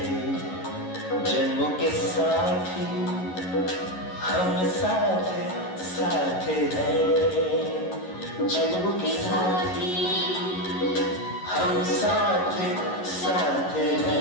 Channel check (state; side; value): late; right; 11 ms